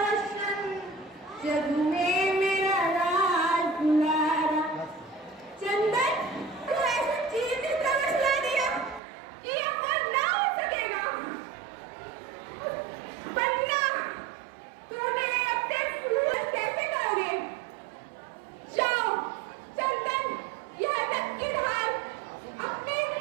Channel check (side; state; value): left; drops out; at 9.0 s